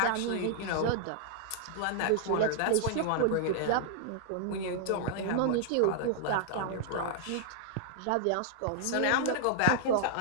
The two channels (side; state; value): both; different; correlation -0.01